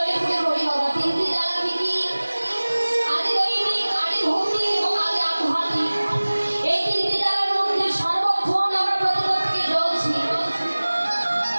পড়ে বলি বাবা। তিনটি জ্বালা কি? আদি দৈনিক, আদি ভৌতিক এবং আদি আধ্যাত্মিক। এই তিনটি জ্বালার মধ্যে সর্বক্ষণ আমরা প্রতিপদ থেকে জ্বলছি।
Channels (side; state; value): both; inverted; correlation -1.00